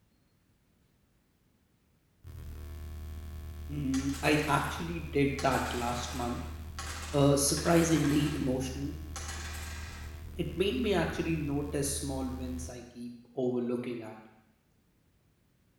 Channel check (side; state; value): both; identical; correlation 1.00